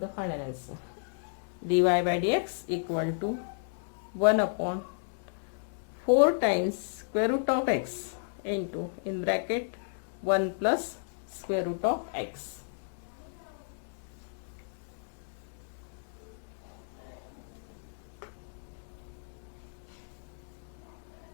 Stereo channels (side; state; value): right; silent; digital silence